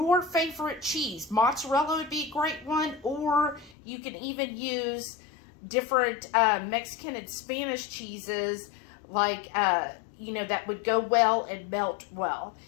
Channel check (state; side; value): drops out; right; at 3.8 s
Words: favorite cheese. Mozzarella would be a great one. Or you can even use different Mexican and Spanish cheeses. Like, you know, that would go well and melt well.